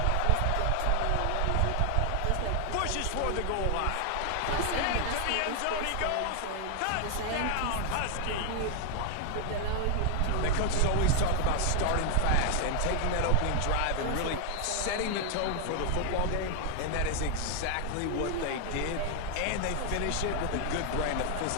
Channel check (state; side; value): different; both; correlation 0.00